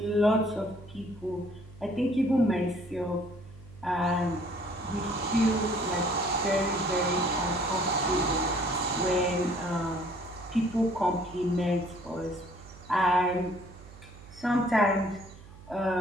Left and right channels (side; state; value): right; noise; hum, 19 dB below the sound